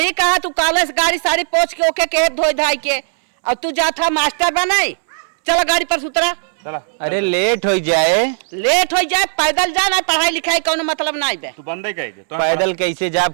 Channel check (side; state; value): left; silent; digital silence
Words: कहा। तू कॉलेज गाड़ी सारी पोछ के ओके के धोई धाई के और तू जाता मास्टर बनाई। चला गाड़ी पर सुतरा। चला। अरे लेट हो जाए, लेट हो जाए पैदल जा ना, पढ़ाई लिखाई कोनो मतलब नहीं बे। तू बंदे गई थे तो पैदल कैसे जाब,